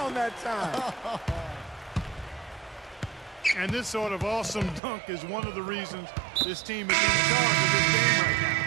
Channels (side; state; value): left; drops out; at 4.8 s